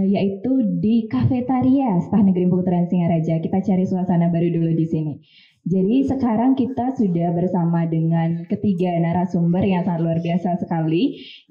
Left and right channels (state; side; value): identical; both; correlation 1.00